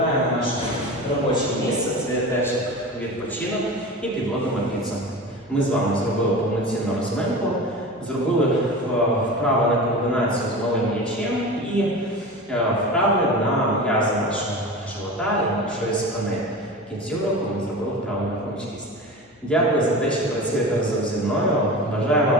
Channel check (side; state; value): both; normal; correlation 0.31